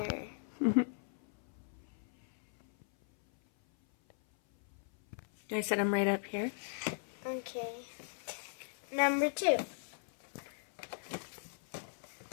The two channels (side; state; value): right; silent; 52 dB below the other